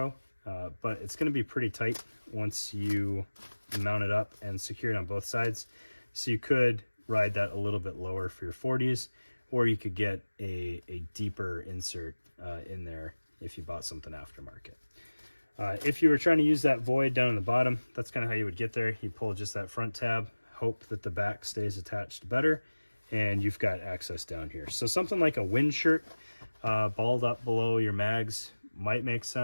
but it's going to be pretty tight once you mount it up and secure it on both sides. So you could ride that a little bit lower for your 40s, or you could get a deeper insert in there if you bought something aftermarket. If you were trying to use that void down in the bottom, that's kind of how you would get there. You pull just that front tab, hope that the back stays attached better, and you've got access down here. So something like a wind shirt balled up below your mags might make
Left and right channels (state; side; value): inverted; both; correlation -1.00